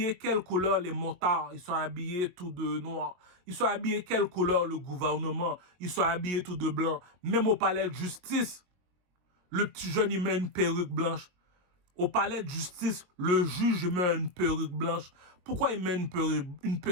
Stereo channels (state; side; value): late; left; 22 ms